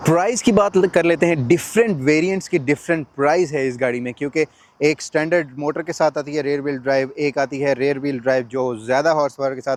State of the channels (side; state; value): both; identical; correlation 1.00